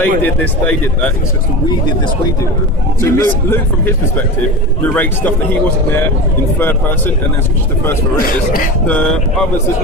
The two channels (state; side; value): normal; both; correlation 0.28